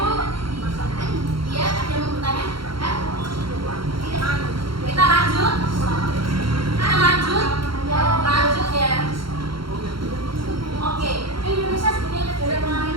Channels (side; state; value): left; late; 0.73 ms